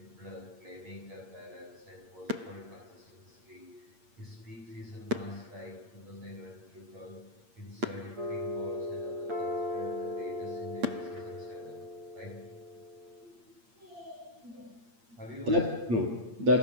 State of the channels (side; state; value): left; late; 8.6 ms